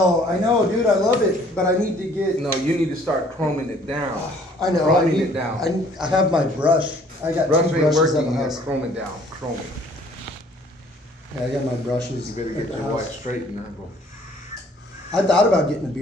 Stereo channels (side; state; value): both; normal; correlation 0.58